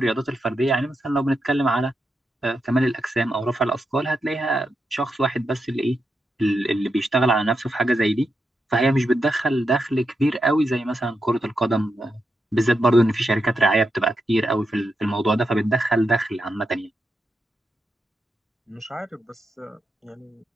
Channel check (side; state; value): both; normal; correlation 0.85